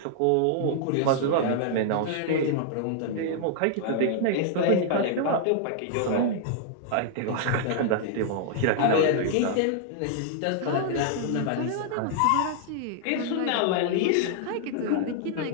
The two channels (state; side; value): different; both; correlation -0.01